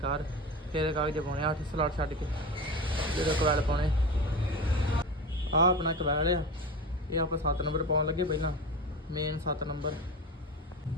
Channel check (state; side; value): normal; both; correlation 0.27